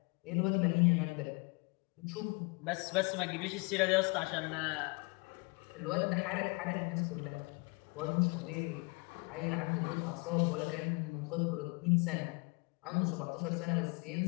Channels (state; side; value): quieter; right; 29.2 dB